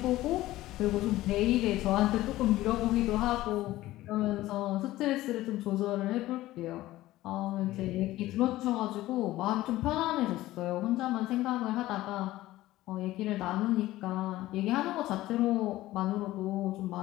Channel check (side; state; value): right; quieter; 16.3 dB